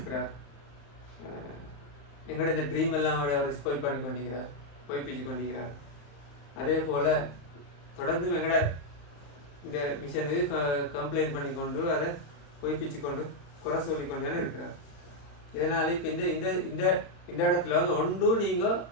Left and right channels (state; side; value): late; right; 35 ms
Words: எங்களோட இந்த ட்ரீம் எல்லாம் அவர் ஸ்பாயில் பண்ணி கொண்டிருக்கிறார், பொய்ப்பிச்சு கொண்டிருக்கிறார். அதே போல் தொடர்ந்து எங்களோட இந்த மிஷனுக்கு கம்ப்ளைண்ட் பண்ணி கொண்டு அதை பொய்ப்பிச்சு கொண்டு குறை சொல்லிக்கொண்டு தானே இருக்கிறார். இதனால் இப்போ இந்த இந்த இந்த இந்த இடத்துல வந்து ஒன்றும் நீங்கள்